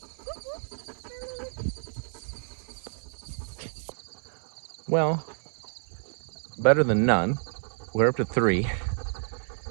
Well, better than none. We're up to 3.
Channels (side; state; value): left; silent; digital silence